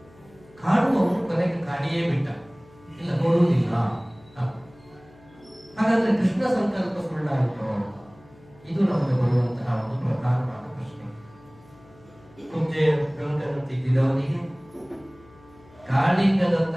ಕಾಡುವವರು ಕೊನೆಗೆ ಕಾಡಿಯೇ ಬಿಟ್ಟ, ಇಲ್ಲ ನೋಡುವುದಿಲ್ಲ. ಹಾಗಾದ್ರೆ ಕೃಷ್ಣ ಸಂಕಲ್ಪ ಸುಳ್ಳಾಯಿತು? ಇದು ನಮಗೆ ಬರುವಂತಹ ಒಂದು ಪ್ರಧಾನವಾದ ಪ್ರಶ್ನೆ. ಕುಬ್ಜೆಯ ಗಂಟನ್ನು ತಿದ್ದಿದವನಿಗೆ,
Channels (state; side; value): noise; left; hum, 26 dB below the sound